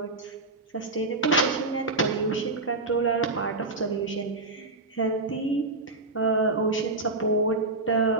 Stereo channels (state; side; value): quieter; left; 3.1 dB